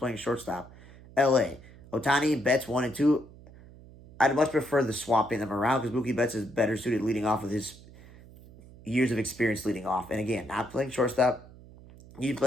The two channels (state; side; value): noise; right; hum, 21 dB below the sound